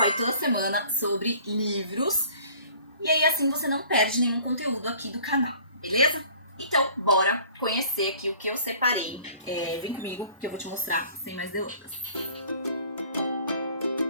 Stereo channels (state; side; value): inverted; both; correlation -0.51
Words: toda semana sobre livros. E aí, assim, você não perde nenhum conteúdo aqui do canal, beleza? Então, bora conhecer aqui o que eu separei. Vem comigo que eu vou te mostrar sem mais delongas.